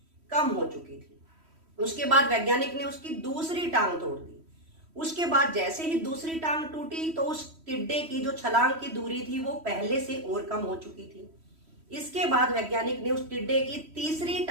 कम हो चुकी थी। उसके बाद वैज्ञानिक ने उसकी दूसरी टांग तोड़ दी। उसके बाद जैसे ही दूसरी टांग टूटी तो उस टिड्डे की जो छलांग की दूरी थी वो पहले से और कम हो चुकी थी। इसके बाद वैज्ञानिक ने उस टिड्डे की तीसरी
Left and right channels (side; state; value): left; late; 3.1 ms